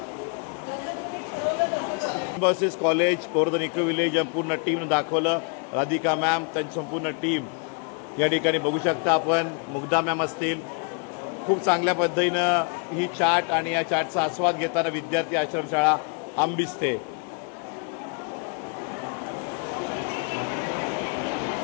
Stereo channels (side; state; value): right; quieter; 38.5 dB